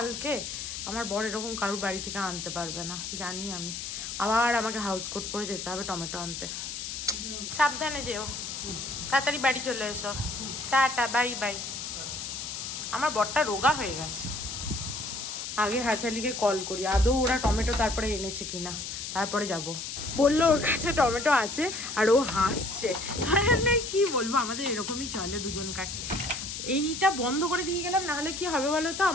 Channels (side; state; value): left; noise; hiss, 6 dB below the sound